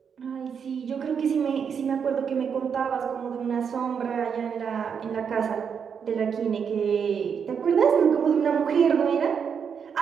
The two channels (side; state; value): left; quieter; 6.9 dB